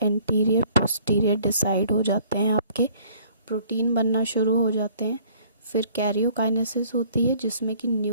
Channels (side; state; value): both; inverted; correlation -0.56